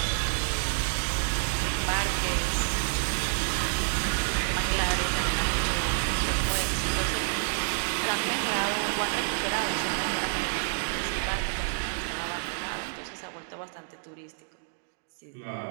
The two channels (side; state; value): left; silent; digital silence